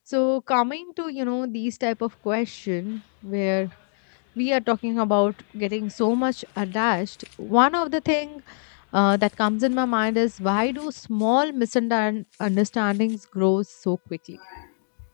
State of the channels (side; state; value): right; silent; digital silence